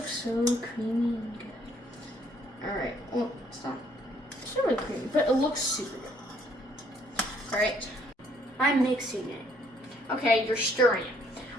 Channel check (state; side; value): normal; both; correlation 0.66